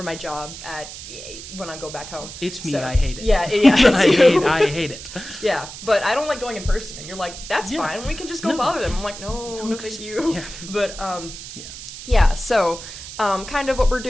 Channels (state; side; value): noise; right; hiss, 12 dB below the sound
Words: job when I go back home. It's me. So, I hate it. Yeah. I hate it. Yeah, but I don't like going in person. And you're like, that's fine. We can just go bother them. I'm like, no, thank you. Yeah. But yeah. So kind of what we're